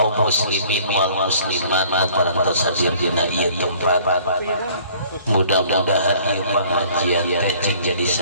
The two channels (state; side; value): inverted; both; correlation -0.54